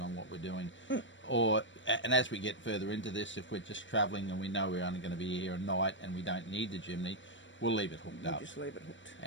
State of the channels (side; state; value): right; late; 0.54 ms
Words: what we're doing. And as we get further into this, if we're just travelling and we know we're only going to be here at night and we don't need the chimney, we'll leave it hooked up. Just leave it hooked.